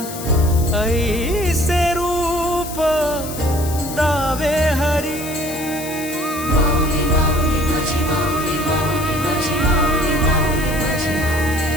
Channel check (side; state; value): left; noise; hiss, 11 dB below the sound